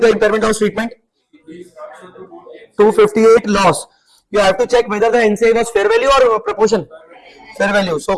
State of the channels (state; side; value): identical; both; correlation 1.00